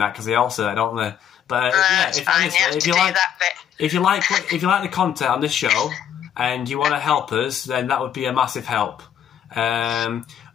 because they all say that, don't they? But if you like the content on this show and you want to help us, then that would be a massive help. I'm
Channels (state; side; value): quieter; right; 9.4 dB